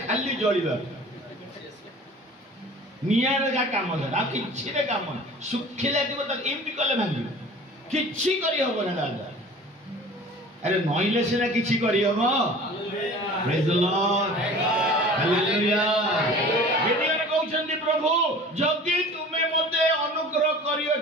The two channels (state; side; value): normal; both; correlation 0.43